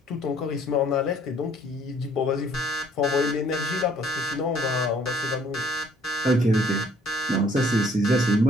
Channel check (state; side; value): normal; both; correlation 0.60